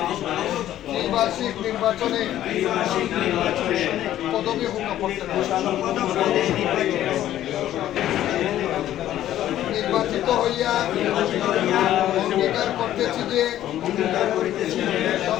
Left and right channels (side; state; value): right; quieter; 12.6 dB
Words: ত্রিবার্ষিক নির্বাচনে পদবী নির্বাচিত হইয়া অঙ্গীকার করতেছি যে